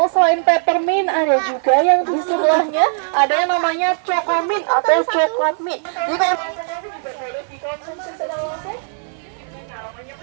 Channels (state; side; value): silent; left; 56 dB below the other